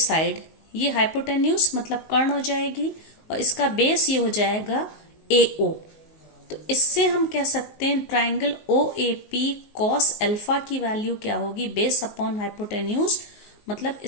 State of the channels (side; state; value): right; late; 19 ms